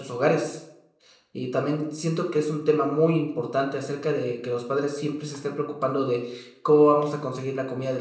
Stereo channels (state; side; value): identical; both; correlation 1.00